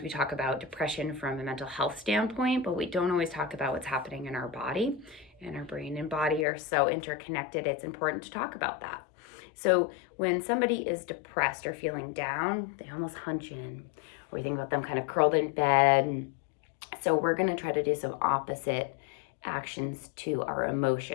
we talk about depression from a mental health standpoint, but we don't always talk about what's happening in our body. And our brain and body are so interconnected, it's important to talk about that. So when somebody is depressed or feeling down, they almost hunch in, or you think about them kind of curled in bed. So we're going to try to do some opposite actions to our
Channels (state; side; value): drops out; right; at 6.5 s